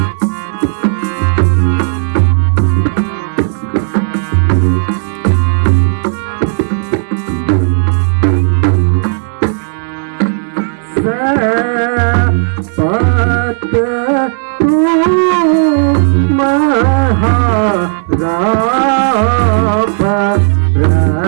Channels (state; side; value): silent; left; digital silence